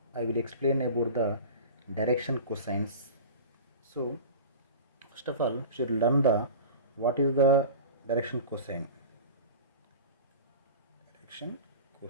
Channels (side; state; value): both; inverted; correlation -0.34